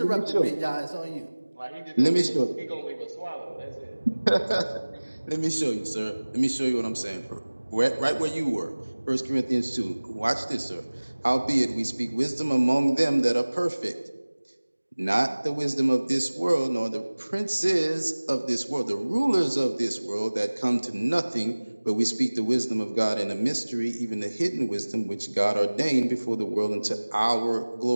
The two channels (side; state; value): both; inverted; correlation -1.00